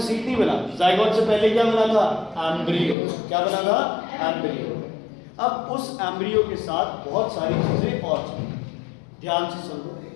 सीड नहीं बना, जाइगोट से पहले क्या बना था, एम्ब्रियो। क्या बना था, एम्ब्रियो। अब उस एम्ब्रियो के साथ बहुत सारी चीजें और चीजें ध्यान से सुनो।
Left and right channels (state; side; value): drops out; right; at 3.0 s